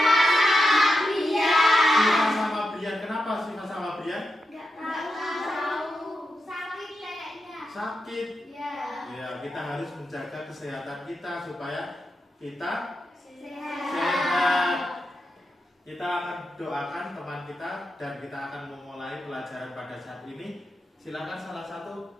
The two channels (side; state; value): both; normal; correlation 0.87